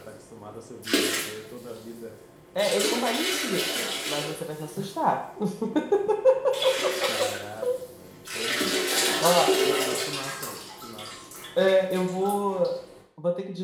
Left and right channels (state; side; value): identical; both; correlation 1.00